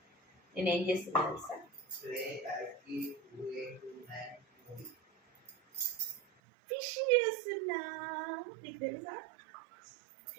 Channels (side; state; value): left; drops out; at 6.2 s